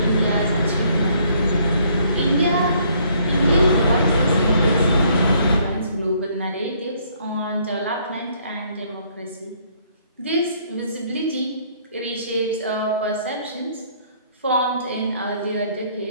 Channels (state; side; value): inverted; both; correlation -0.65